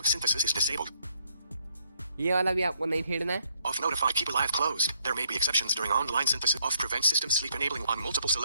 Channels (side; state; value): both; inverted; correlation -0.71